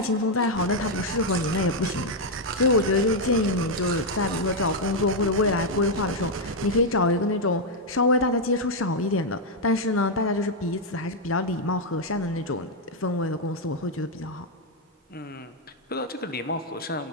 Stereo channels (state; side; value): normal; both; correlation 0.00